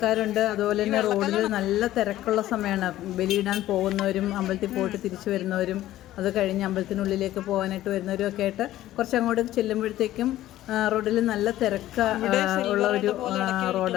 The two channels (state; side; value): quieter; right; 14.3 dB